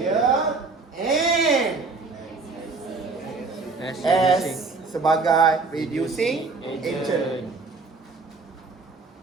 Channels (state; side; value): quieter; left; 4.0 dB